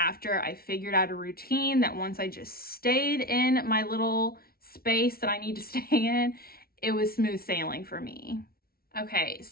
I figured out a routine that once I just stayed in my little space that I need to stay in, it was smooth sailing for me. Okay,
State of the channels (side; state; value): right; late; 0.44 ms